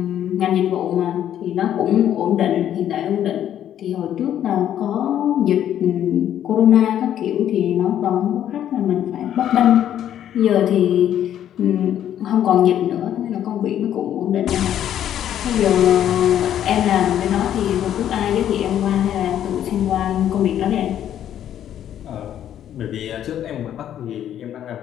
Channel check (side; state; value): right; quieter; 10.7 dB